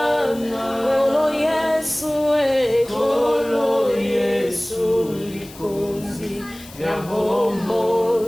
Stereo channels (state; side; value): noise; left; hiss, 19 dB below the sound